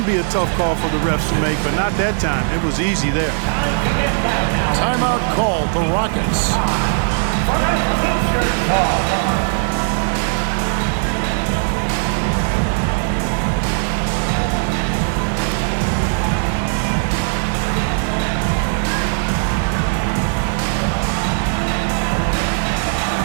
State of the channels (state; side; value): silent; left; 67 dB below the other